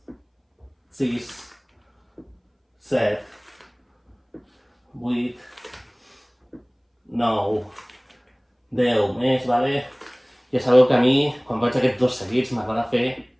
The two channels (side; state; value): both; identical; correlation 1.00